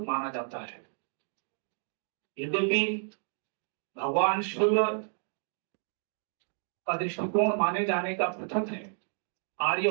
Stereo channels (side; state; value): left; silent; 57 dB below the other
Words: माना जाता है। यद्यपि भगवान शिव का दृष्टिकोण माने जाने का पृथक है। आर्य